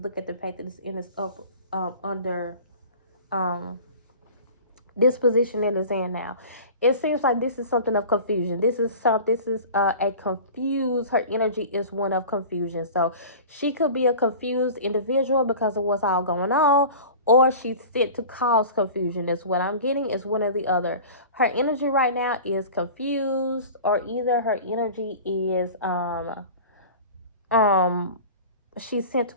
at the fact that it's in this up under this position that it's in now. It seems like this is something of confusion. This is a confused. Her energy is one of confusion. So she could be a confused individual because of what's all going on, or she's sent to cause confusion. That's what I'm getting. Is one or the other. Her energy right now is confused, or either her energy is she's sent to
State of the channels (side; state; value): both; inverted; correlation -0.38